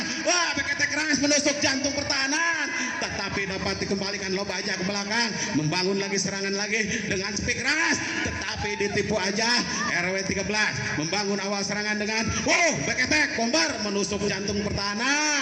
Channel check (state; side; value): identical; both; correlation 1.00